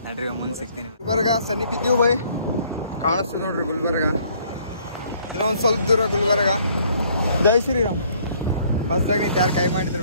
ನಡ್ರಿ ಮುಂದೆ ಸಿಗ್ತೀನಿ ಗುಲ್ಬರ್ಗ ಸನಿಪಿದ್ದೀವಿ ಬೈ ಕಾಣಿಸ್ತೀವಿ ನೋಡ್ರಿ ಗುಲ್ಬರ್ಗ ಇನ್ನೂ ಒಂದು ಸ್ವಲ್ಪ ದೂರ ಗುಲ್ಬರ್ಗ ಜೈ ಶ್ರೀರಾಮ್ ಬಸ್ದಾಗ ನಿಂತು ಯಾರು ಕೈ ಮಾಡಿದ್ರು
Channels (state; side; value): inverted; both; correlation -0.62